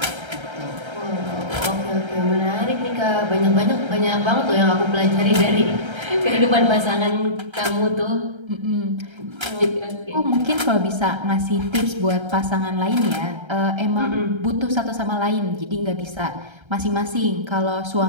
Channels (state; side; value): late; left; 1.3 ms